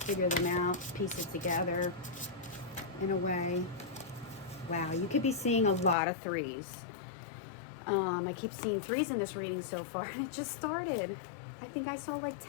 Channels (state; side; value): drops out; right; at 6.0 s